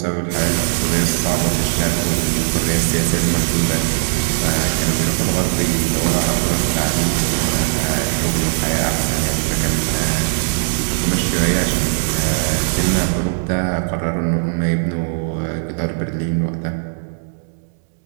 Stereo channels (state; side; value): silent; left; 67 dB below the other